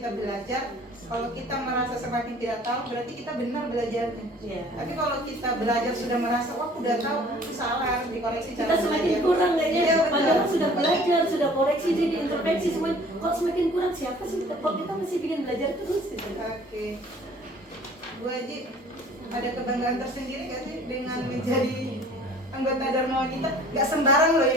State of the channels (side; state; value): both; normal; correlation 0.51